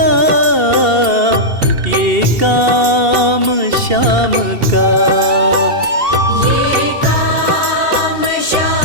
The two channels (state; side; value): late; left; 2.7 ms